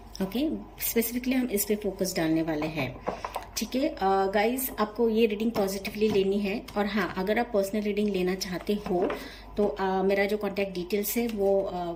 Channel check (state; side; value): identical; both; correlation 1.00